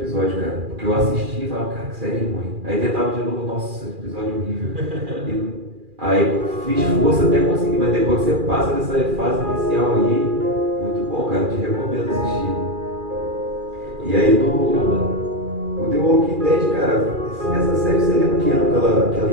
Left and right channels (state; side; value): late; left; 2.4 ms